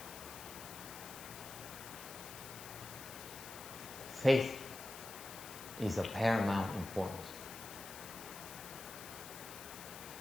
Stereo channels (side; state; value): left; noise; hiss, 11 dB below the sound